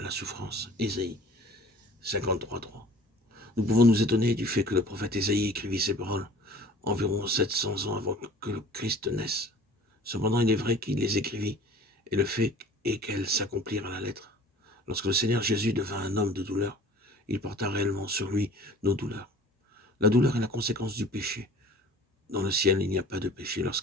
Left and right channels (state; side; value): normal; both; correlation 0.46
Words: la souffrance. Ésaïe 53,3. Nous pouvons nous étonner du fait que le prophète Ésaïe écrivit ces paroles environ 700 ans avant que le Christ naisse. Cependant, il est vrai qu'il les écrivit, et le fait est qu'elles s'accomplirent à la lettre. Lorsque le Seigneur Jésus devint un homme de douleur, il porta réellement sur lui nos douleurs. La douleur est la conséquence du péché. Dans le ciel, il n'y a pas de péché.